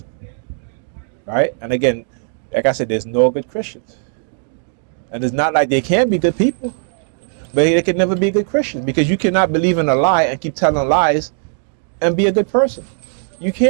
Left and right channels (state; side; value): silent; left; 66 dB below the other